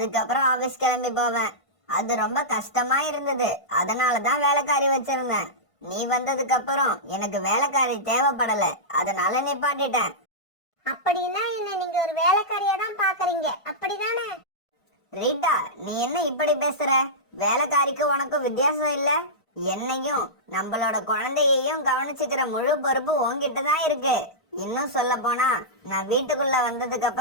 ஆபீஸ் கிளம்பி போவேன். அது ரொம்ப கஷ்டமா இருந்தது. அதனாலதான் வேலைக்காரி வச்சிருந்தேன். நீ வந்ததுக்கு அப்புறம் எனக்கு வேலைக்காரி தேவைப்படல, அதனால நிப்பாட்டிட்டேன். அப்படின்னா என்ன நீங்க ஒரு வேலைக்காரியா தான் பாக்குறீங்க, அப்படிதானே? ரீட்டா, நீ என்ன இப்படி பேசுற? வேலைக்காரிக்கு உனக்கும் வித்தியாசம் இல்ல? என்னையும் நம்மளோட குழந்தையையும் கவனிச்சுக்கிற முழு பொறுப்பு உன்கிட்ட தான் இருக்கு. இன்னும் சொல்ல போனா, நான் வீட்டுக்குள்ள வந்ததுக்கு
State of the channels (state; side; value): late; right; 1.5 ms